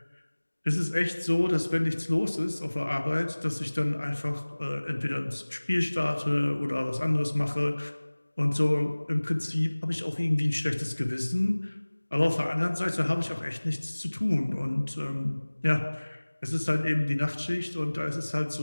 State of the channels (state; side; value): inverted; both; correlation -1.00